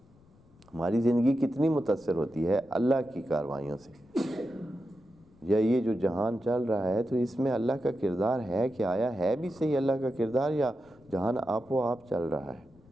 ہماری زندگی کتنی متاثر ہوتی ہے اللہ کی کاروائیوں سے، یا یہ جو جہان چل رہا ہے تو اس میں اللہ کا کردار ہے کہ آیا ہے بھی صحیح اللہ کا کردار، یا جہان آپ و آپ چل رہا ہے؟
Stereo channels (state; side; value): noise; left; rumble, 28 dB below the sound